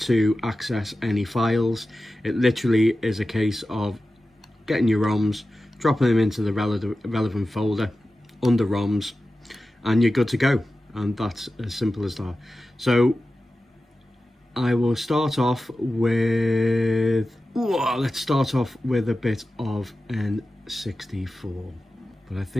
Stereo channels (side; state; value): both; normal; correlation 0.94